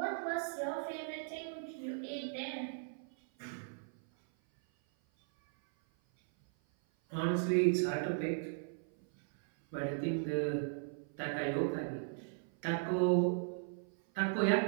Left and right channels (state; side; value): silent; left; 53 dB below the other